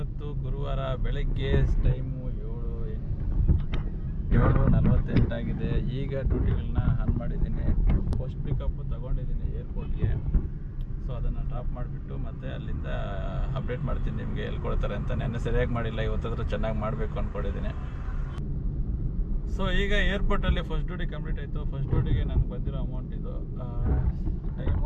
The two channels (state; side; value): identical; both; correlation 1.00